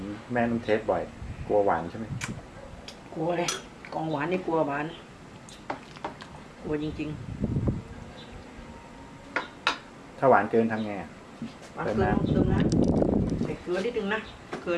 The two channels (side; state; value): both; identical; correlation 1.00